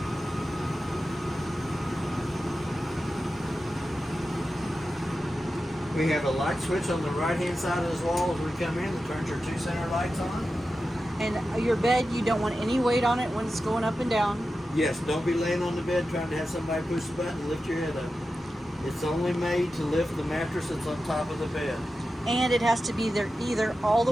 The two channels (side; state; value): both; normal; correlation 0.92